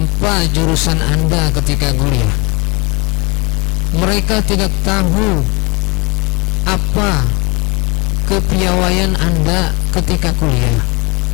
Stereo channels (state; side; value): quieter; right; 28.0 dB